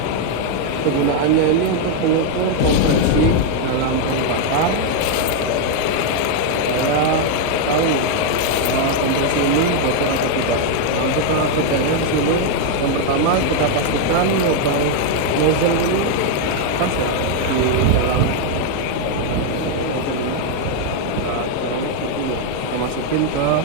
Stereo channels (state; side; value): different; both; correlation 0.00